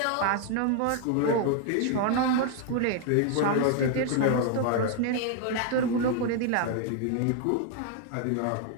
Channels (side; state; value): both; different; correlation 0.00